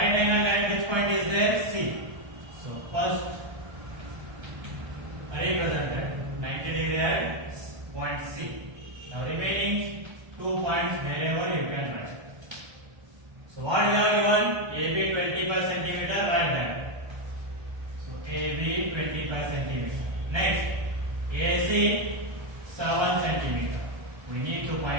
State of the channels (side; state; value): left; late; 1.3 ms